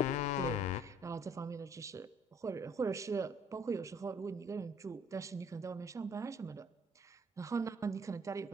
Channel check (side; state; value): both; normal; correlation 0.59